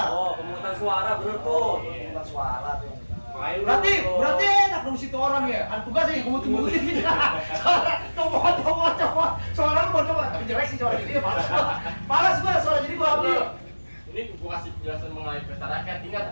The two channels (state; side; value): inverted; both; correlation -1.00